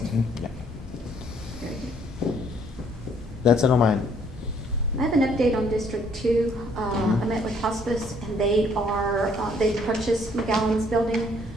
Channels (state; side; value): normal; both; correlation 0.64